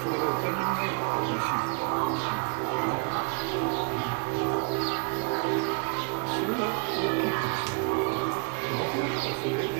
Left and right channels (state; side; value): quieter; left; 34.5 dB